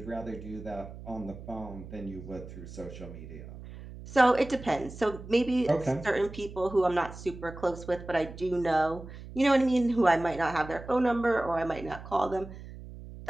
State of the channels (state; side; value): noise; right; hum, 14 dB below the sound